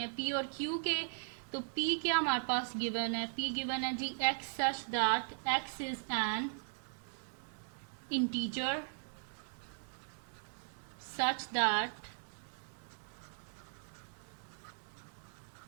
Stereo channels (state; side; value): silent; left; digital silence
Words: हैं पी और क्यू के। तो P क्या हमारे पास गिवन है? P गिवन है जी x such that x is an integer such that